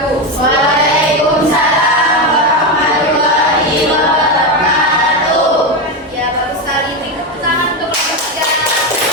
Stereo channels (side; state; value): both; normal; correlation 0.12